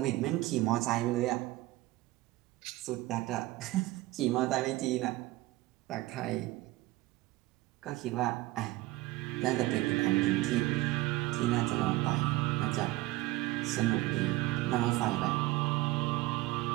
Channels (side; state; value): left; quieter; 18.6 dB